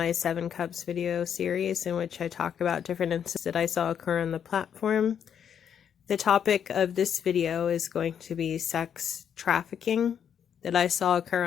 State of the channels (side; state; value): right; quieter; 8.3 dB